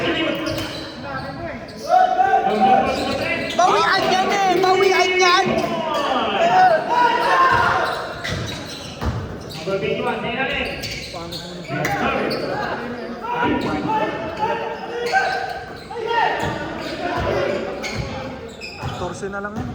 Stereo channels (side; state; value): both; identical; correlation 1.00